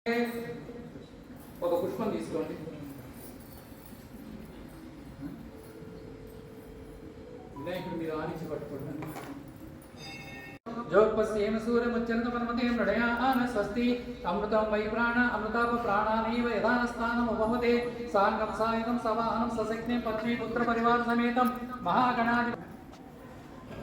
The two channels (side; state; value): both; identical; correlation 1.00